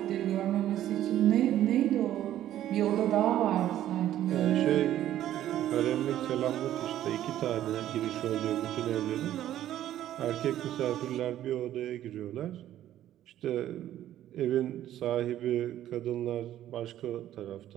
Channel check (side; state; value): left; quieter; 12.4 dB